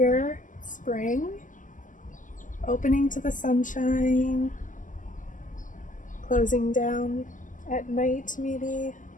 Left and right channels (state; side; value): late; right; 0.38 ms